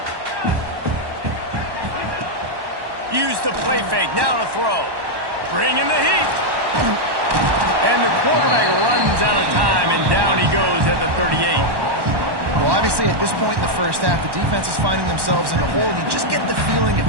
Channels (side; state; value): left; late; 1.1 ms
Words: Use the play fake, now to throw. Bring in the heat. And the quarterback runs out of time and down he goes at the 38. Well, obviously, at this point in the first half, the defense is finding themselves in a hole. You just get the feeling if